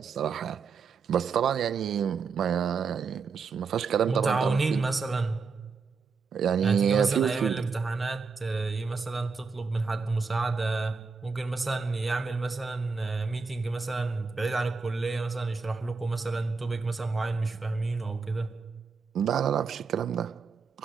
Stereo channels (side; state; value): left; quieter; 5.0 dB